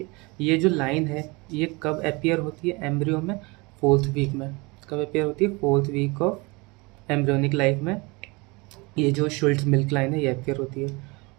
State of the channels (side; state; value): left; quieter; 26.2 dB